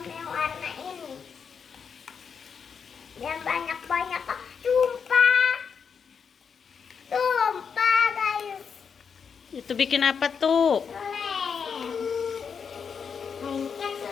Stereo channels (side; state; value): right; quieter; 6.4 dB